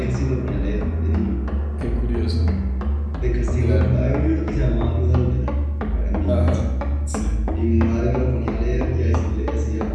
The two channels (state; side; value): identical; both; correlation 1.00